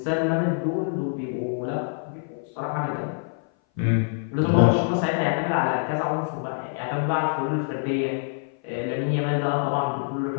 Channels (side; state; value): right; silent; 57 dB below the other